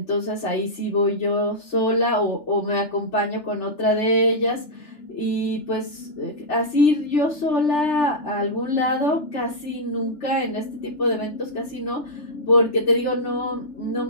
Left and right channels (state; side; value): late; right; 3.4 ms